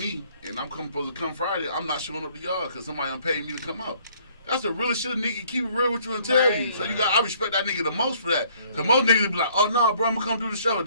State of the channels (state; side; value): inverted; both; correlation -0.61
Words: and I'm supposed to come Friday, I'm not showing up to y'all because somebody done paid me to come out. That's the realest shit a nigga keep it real with you and tell you. So I respect that nigga the most for that. Cause most niggas will be like, oh no, bro, I'm gonna come do the show.